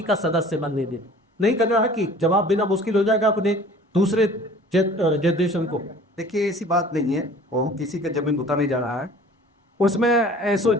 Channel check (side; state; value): both; normal; correlation 0.48